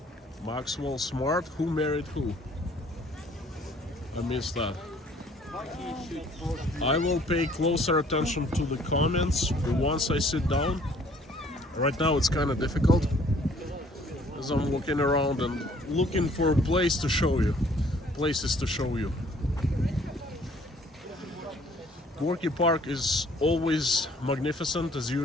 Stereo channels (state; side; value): normal; both; correlation 0.58